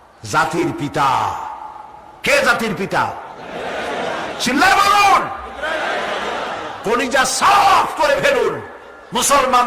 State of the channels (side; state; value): both; identical; correlation 1.00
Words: জাতির পিতা। কে জাতির পিতা? চিল্লায় বলুন, কলিজা সাফ করে ফেলুন,